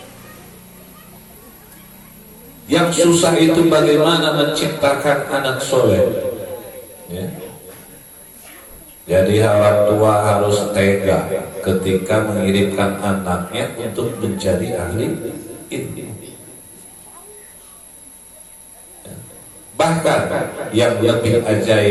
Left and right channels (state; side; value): identical; both; correlation 1.00